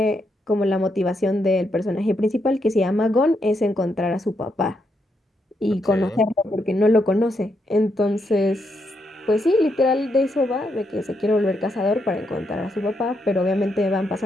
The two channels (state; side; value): normal; both; correlation 0.80